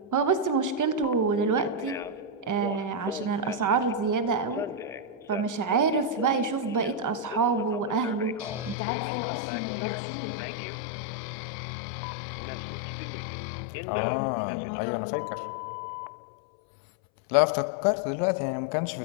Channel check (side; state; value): right; drops out; at 8.8 s